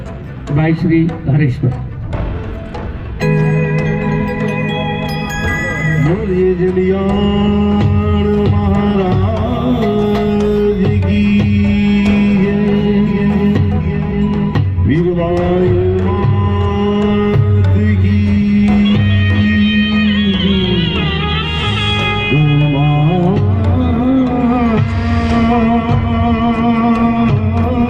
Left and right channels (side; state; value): both; identical; correlation 1.00